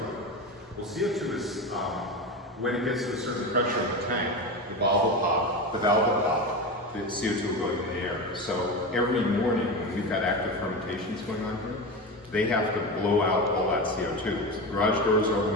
Well, CO2 is, when it gets to a certain pressure in the tank, the valve will pop, the CO2 will go into the air. So every morning when we've got active fermentations going on here, they have to blow out all that CO2. So garage doors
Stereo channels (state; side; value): normal; both; correlation 0.22